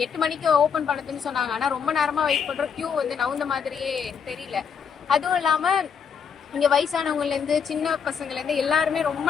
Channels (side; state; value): right; quieter; 6.8 dB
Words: 8 மணிக்கு ஓபன் பண்ணதுன்னு சொன்னாங்க. ஆனா ரொம்ப நேரமா வெயிட் பண்றோம். கியூ வந்து நவுந்த மாதிரியே தெரியல. அதுவும் இல்லாம இங்க வயசானவங்கல இருந்து சின்ன பசங்கள்ல இருந்து எல்லாருமே ரொம்ப